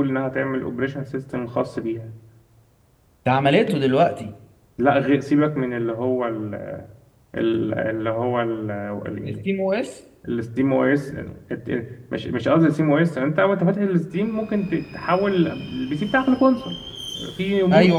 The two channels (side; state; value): both; identical; correlation 1.00